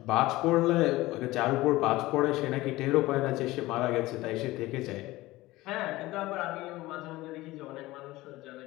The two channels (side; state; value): right; quieter; 18.6 dB